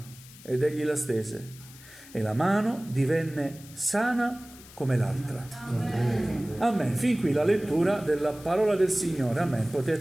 Ed egli la stese, e la mano divenne sana come l'altra. Amen. Fin qui la lettura della parola del Signore. Amen.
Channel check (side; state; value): left; noise; hiss, 20 dB below the sound